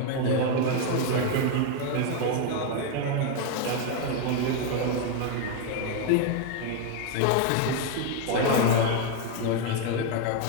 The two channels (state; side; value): different; both; correlation 0.01